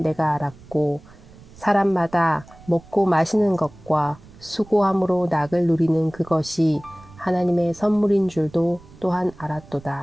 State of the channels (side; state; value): right; noise; rumble, 22 dB below the sound